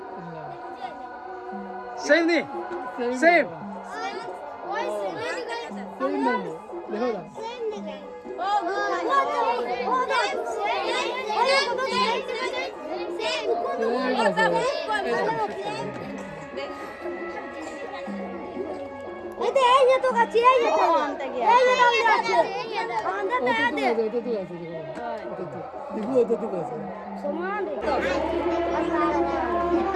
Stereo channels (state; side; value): identical; both; correlation 1.00